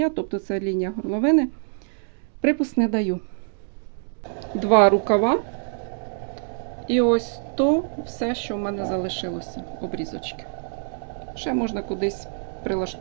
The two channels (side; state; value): left; silent; digital silence